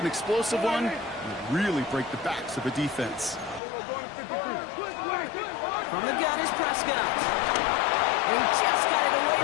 explosive one, you really break the backs of a defense. From the gun is Prescott. And he just got it away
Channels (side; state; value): right; drops out; at 3.6 s